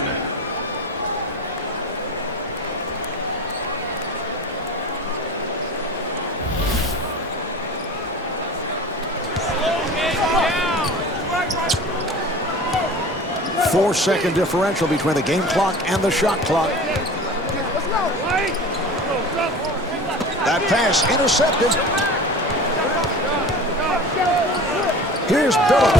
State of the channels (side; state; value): both; normal; correlation 0.37